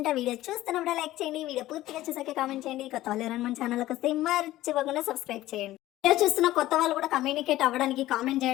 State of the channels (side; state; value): right; quieter; 15.6 dB